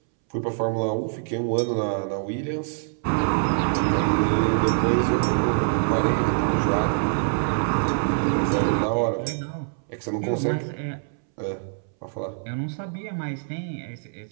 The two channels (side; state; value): left; silent; 62 dB below the other